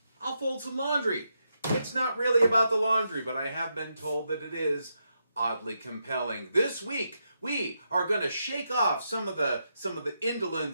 I'll fold some laundry. It's not really about the laundry, but I have been told that it is oddly compelling. This week, we are going to shake off some of the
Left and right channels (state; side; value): inverted; both; correlation -0.83